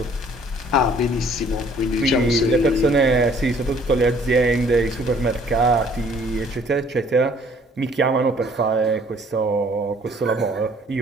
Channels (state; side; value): normal; both; correlation 0.58